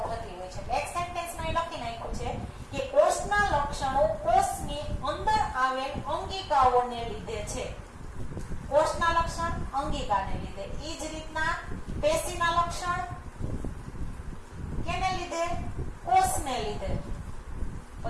થતી હોય છે. એક સેન્ટેન્સમાં એ લખી નાખ્યું છે કે કોષના લક્ષણો કોષની અંદર આવેલ અંગિકાઓને લીધે છે. કોષના લક્ષણ અંગિકાને લીધે. એ જ રીતના પેશીના લક્ષણ કેને લીધે? કોષને લીધે.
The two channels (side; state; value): both; identical; correlation 1.00